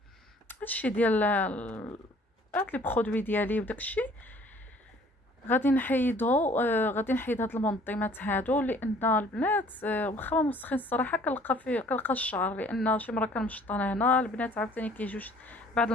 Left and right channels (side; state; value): both; normal; correlation 0.55